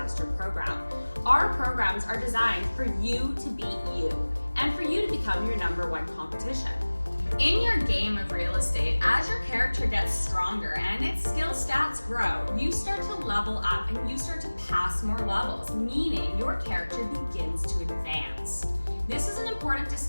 Program. Our programs are designed for you to beat you and for you to become your number one competition. In your game of real estate, as your character gets stronger and its skill stats grow, you start to level up and you start to pass more levels, meaning your character begins to advance. This is an important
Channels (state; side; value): inverted; both; correlation -1.00